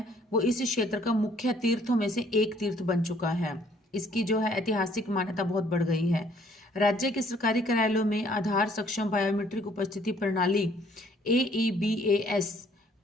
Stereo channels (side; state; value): both; normal; correlation 0.62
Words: वो इस क्षेत्र का मुख्य तीर्थों में से एक तीर्थ बन चुका है। इसकी जो है ऐतिहासिक मान्यता बहुत बढ़ गई है। राज्य के सरकारी कार्यालयों में आधार सक्षम बायोमेट्रिक उपस्थिति प्रणाली AEBAS